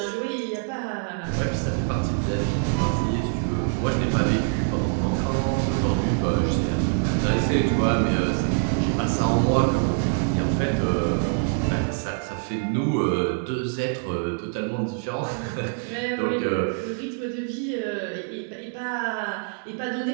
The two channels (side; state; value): left; silent; 62 dB below the other